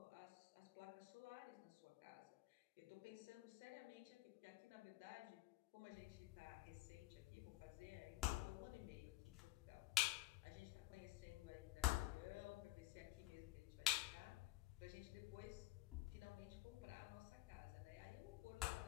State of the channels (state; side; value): quieter; right; 16.9 dB